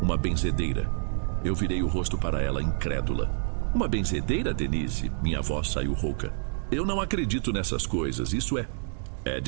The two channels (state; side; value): silent; left; digital silence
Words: benzedeira. Eu virei o rosto para ela, incrédula. Uma benzedeira, Denise? Minha voz saiu rouca. Eu não acredito nessas coisas, isso é